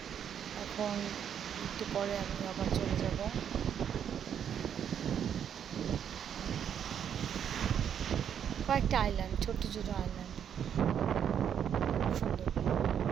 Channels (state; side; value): quieter; left; 8.6 dB